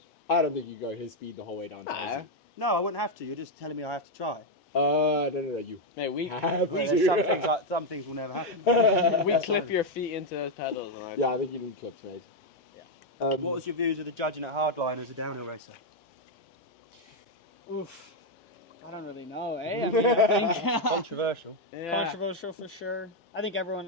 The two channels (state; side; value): normal; both; correlation 0.02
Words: I don't think you go his speed the whole way down. Nah. No, I wouldn't have to. You're just telling me I have to try. No, you Mate, we have Well, to. there's some things will never happen. we clip your feet into those pedals, and Yeah, I think you need clips, mate. Yeah. What was your views of the judging at Hardline as a downhill racer? Oof. I don't really know, eh? I mean, I think Controversial. yeah. controversial for sure. I think